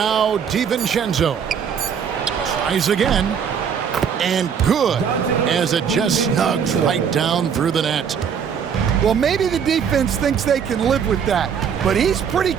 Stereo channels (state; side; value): quieter; left; 7.4 dB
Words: DiVincenzo. Tries again. And good, as it just snugs right down through the net. Well, maybe the defense thinks they can live with that, but he's pretty